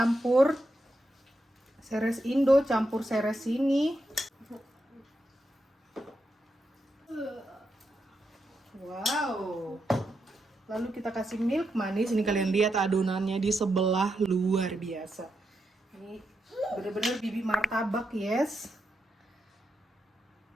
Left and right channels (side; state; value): both; normal; correlation 0.84